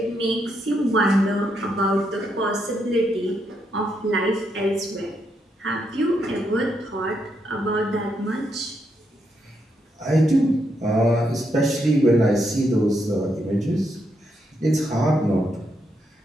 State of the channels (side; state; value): both; normal; correlation 0.79